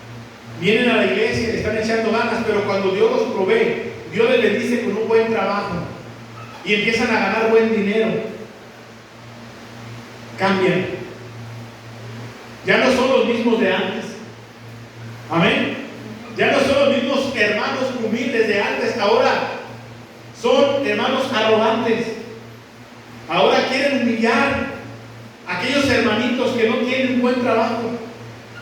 vienen a la iglesia y le están echando ganas, pero cuando Dios los provee, Dios les bendice con un buen trabajo y empiezan a ganar buen dinero, cambian. Ya no son los mismos de antes. Amén. Ya no son los mismos hermanos humildes de antes. Ahora son hermanos arrogantes. Ahora quieren humillar a aquellos hermanitos que no tienen buen trabajo,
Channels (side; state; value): both; identical; correlation 1.00